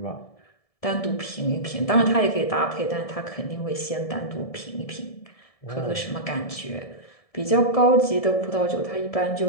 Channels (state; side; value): late; right; 1.7 ms